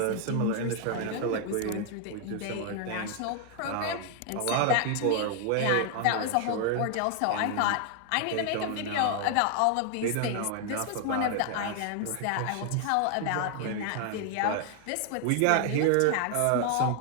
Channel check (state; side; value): different; both; correlation 0.00